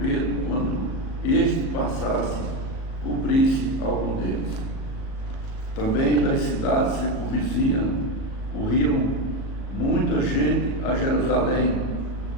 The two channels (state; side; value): late; right; 37 ms